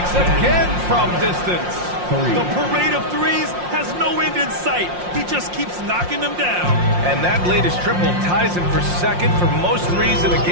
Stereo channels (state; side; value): late; left; 5.6 ms